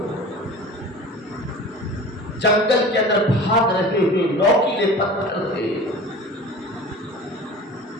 جنگل کے اندر بھاگ رہے ہیں، نوکیلے پتھر تھے،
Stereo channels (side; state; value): both; normal; correlation 0.38